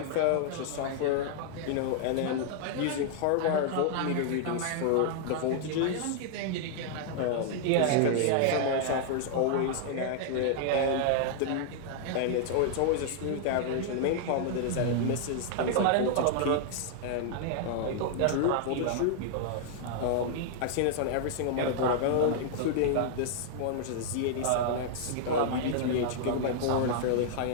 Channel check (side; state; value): both; different; correlation -0.01